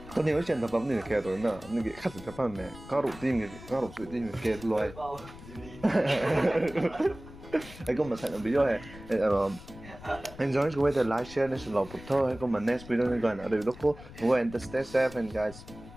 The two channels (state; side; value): noise; left; rumble, 17 dB below the sound